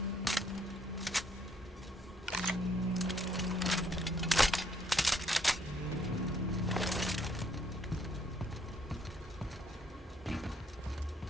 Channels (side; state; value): both; normal; correlation 0.68